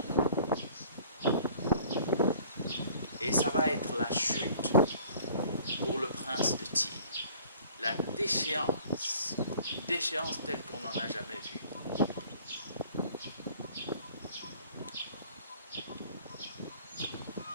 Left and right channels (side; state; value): both; inverted; correlation -0.51